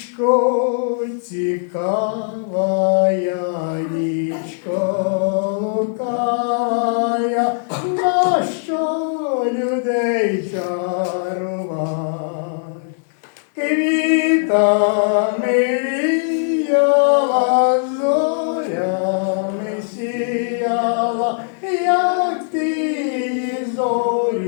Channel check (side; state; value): right; silent; 57 dB below the other